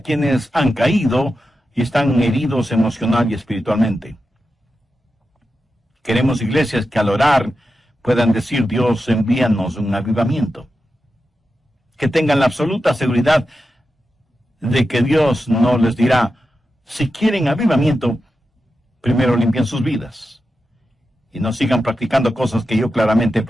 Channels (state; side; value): normal; both; correlation 0.90